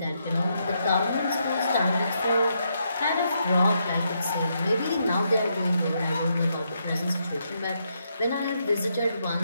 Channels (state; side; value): inverted; both; correlation -0.79